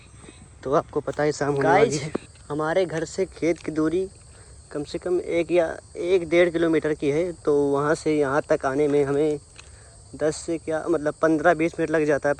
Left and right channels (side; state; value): both; identical; correlation 1.00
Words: तो आपको पता है शाम होने वाली है। हमारे घर से खेत की दूरी कम से कम 1 या 1.5 किलोमीटर की है। तो वहाँ से यहाँ तक आने में हमें 10 से क्या मतलब 15-20 मिनट लग जाता है,